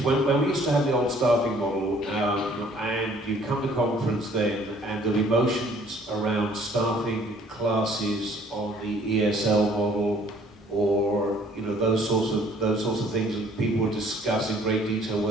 when we used to have the old staffing model, and you'd come to conference then, and there'd be motions around staffing classes on the ESL model, or you know those sorts of things, and people would discuss in great detail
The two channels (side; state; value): both; normal; correlation 0.58